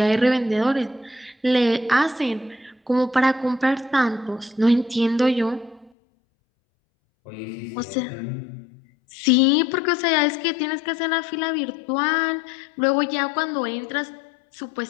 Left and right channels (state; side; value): drops out; right; at 5.9 s